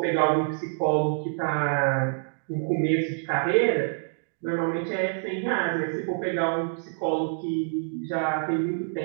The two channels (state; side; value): silent; left; digital silence